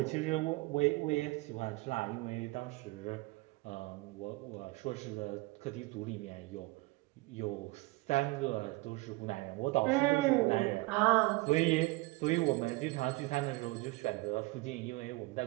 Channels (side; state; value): left; quieter; 22.7 dB